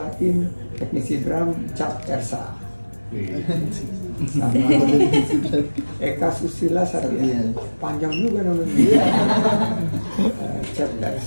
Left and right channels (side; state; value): both; inverted; correlation -1.00